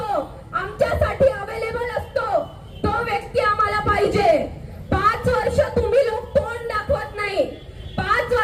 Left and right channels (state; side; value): identical; both; correlation 1.00